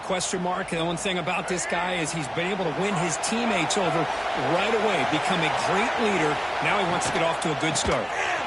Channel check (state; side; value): identical; both; correlation 1.00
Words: question mark. The one thing about this guy is he's been able to win his teammates over right away, become a great leader. Now he wants to get off to a good start.